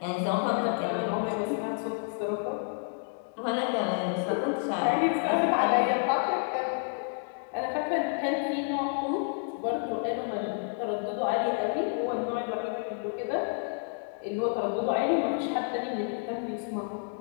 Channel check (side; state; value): right; silent; 58 dB below the other